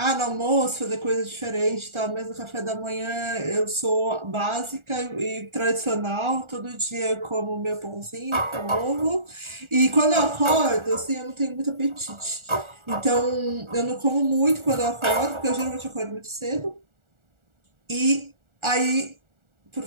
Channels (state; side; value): late; left; 1.4 ms